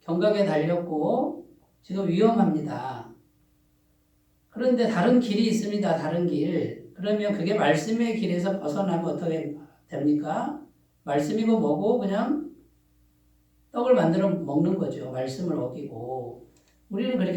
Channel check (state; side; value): identical; both; correlation 1.00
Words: 경각에 달렸고 지금 위험합니다. 그런데 다른 길이 있습니다. 다른 길. 그러면 그게 말씀의 길에서 벗어나면 어떻게 됩니까? 말씀이고 뭐고 그냥 떡을 만들어 먹는 거죠. 말씀을 어기고. 우리는